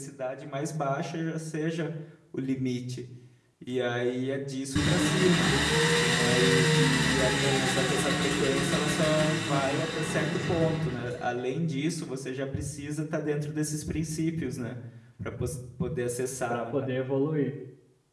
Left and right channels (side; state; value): both; identical; correlation 1.00